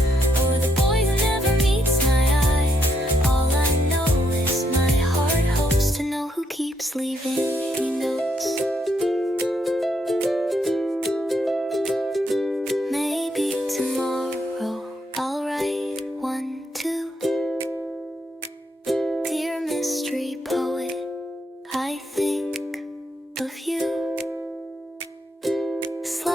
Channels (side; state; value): both; normal; correlation 0.77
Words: or the boy who never meets my eye? All I know is my heart hopes to know who keeps leaving me notes. Maybe tomorrow I'll write one too. Dear mystery poet, I think of you.